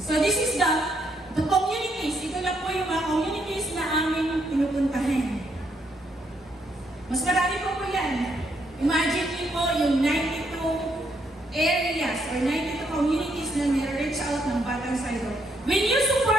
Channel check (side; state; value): both; normal; correlation 0.74